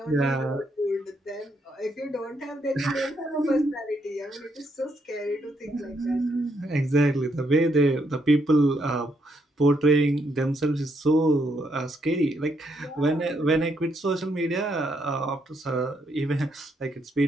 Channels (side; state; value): both; normal; correlation 0.76